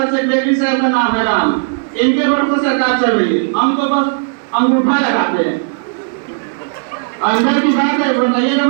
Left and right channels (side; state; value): left; silent; digital silence